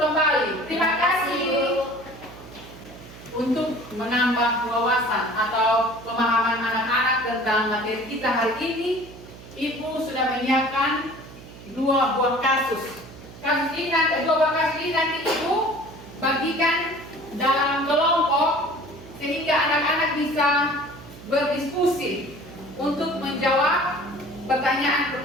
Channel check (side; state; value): right; noise; hum, 18 dB below the sound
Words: tentang materi kita hari ini, Ibu sudah menyiapkan 2 buah kasus. Kasus ini nanti, 2 buah kasus ini nanti Ibu bagikan dalam kelompok sehingga anak-anak bisa berdiskusi untuk menjawab